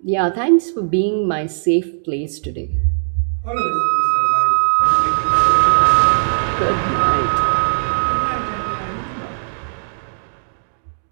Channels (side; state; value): left; silent; digital silence